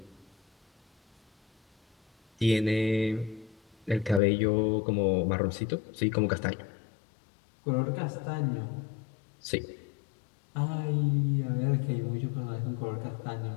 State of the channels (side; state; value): right; drops out; at 4.2 s